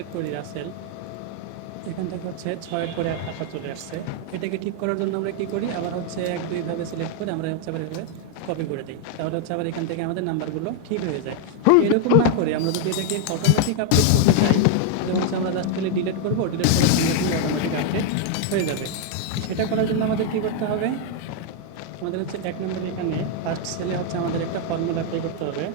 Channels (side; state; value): both; different; correlation 0.00